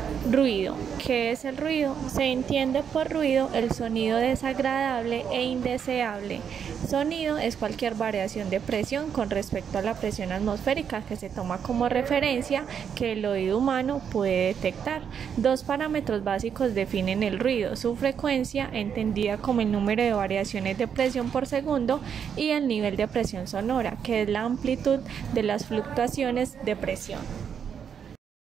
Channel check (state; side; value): quieter; left; 7.7 dB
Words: Ruido. ¿Qué es el ruido? Se entiende por ruido el sonido desagradable e indeseable. Sonido es cualquier variación de presión con respecto a la presión atmosférica que se toma como referencia que el oído humano puede detectar. Dos parámetros básicos definen el ruido: su frecuencia, entendida como el número de variaciones de presión por segundo, y el nivel de presión sonora, que es la amplitud de las fluctuaciones de presión.